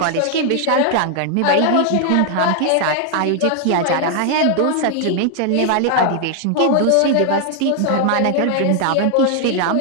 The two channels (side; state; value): both; different; correlation 0.00